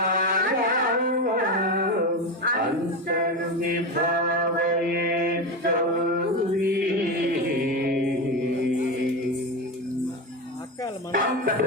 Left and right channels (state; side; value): normal; both; correlation 0.18